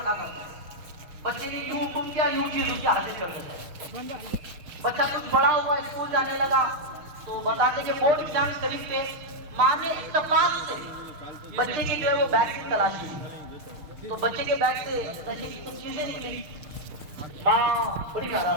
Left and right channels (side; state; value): left; late; 6.6 ms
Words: करते थे। बच्चे ने यूं हुक्म किया यूं चीज उसकी हाजिर कर देते। बच्चा कुछ बड़ा हुआ, स्कूल जाने लगा, तो बताते कि बोर्ड एग्जाम करीब थे। माँ ने इत्तेफाक से बच्चे के जो है वो बैग की तलाशी की, तो बच्चे के बैग से नशे की कुछ चीजें निकली। माँ बड़ी